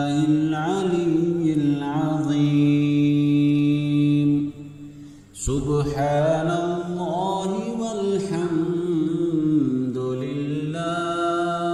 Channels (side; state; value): both; identical; correlation 1.00